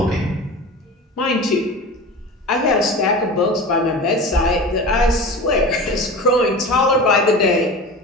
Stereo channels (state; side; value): normal; both; correlation 0.33